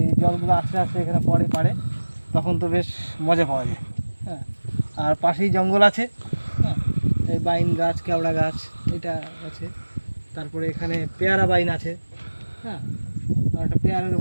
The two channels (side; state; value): both; inverted; correlation -1.00